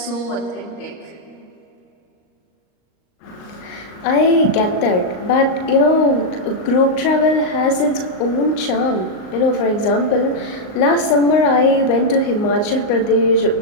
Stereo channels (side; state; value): right; late; 38 ms